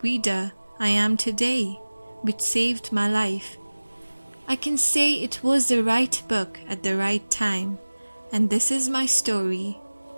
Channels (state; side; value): inverted; both; correlation -1.00